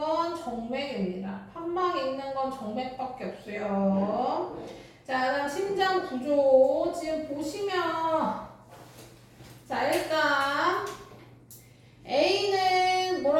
정맥입니다. 판막이 있는 건 정맥밖에 없어요. 자, 그다음 심장 구조 지금 보시면 자 일단 A는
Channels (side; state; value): both; identical; correlation 1.00